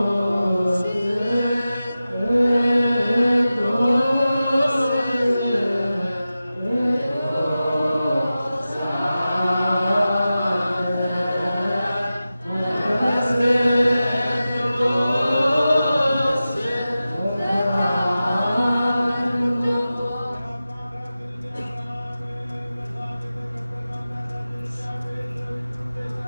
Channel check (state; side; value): inverted; both; correlation -0.94